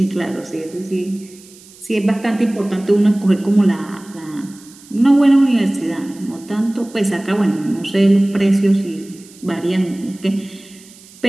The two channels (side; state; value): right; noise; hiss, 23 dB below the sound